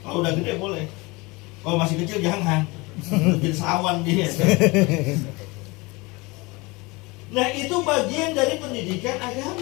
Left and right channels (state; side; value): quieter; right; 24.7 dB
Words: Kalau udah gede boleh. Kalau masih kecil jangan. Jadi sawan dia. Nah, itu bagian dari pendidikan